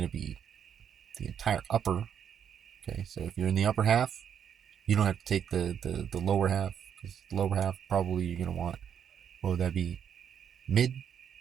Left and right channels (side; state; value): left; quieter; 8.3 dB